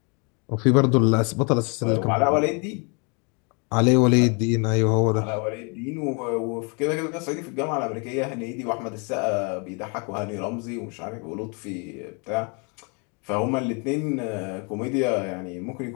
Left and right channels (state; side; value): quieter; right; 34.1 dB